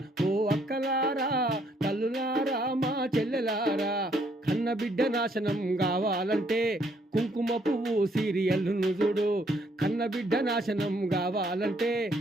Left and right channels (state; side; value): normal; both; correlation 0.69